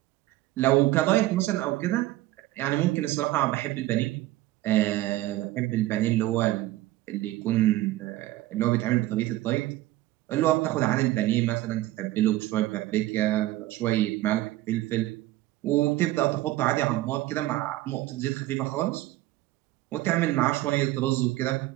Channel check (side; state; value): left; quieter; 16.4 dB